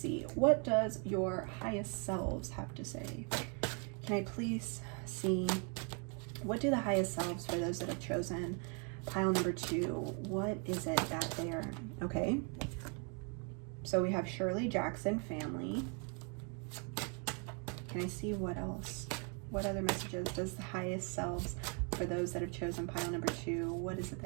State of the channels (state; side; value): quieter; left; 37.4 dB